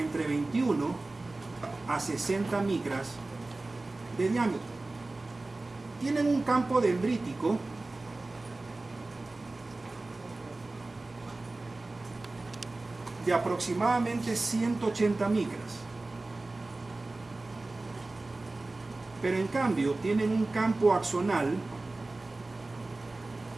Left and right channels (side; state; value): left; quieter; 3.1 dB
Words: entre 21 a 60 micras de diámetro. Tienen un campo dendrítico de aproximadamente 180 micras. Pero en cambio tienen un campo axonal